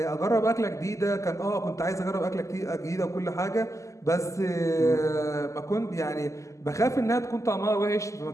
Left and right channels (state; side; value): late; right; 0.15 ms